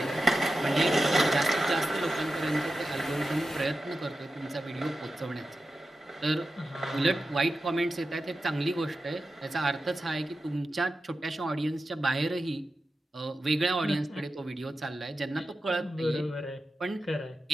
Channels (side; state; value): both; normal; correlation 0.92